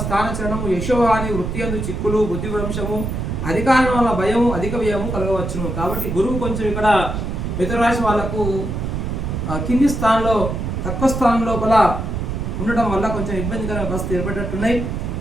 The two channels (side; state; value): right; noise; rumble, 3 dB below the sound